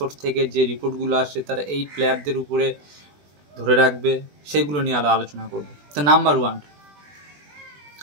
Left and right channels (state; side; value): late; left; 20 ms